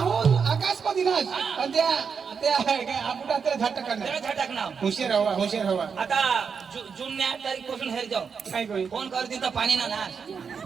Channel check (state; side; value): quieter; left; 6.1 dB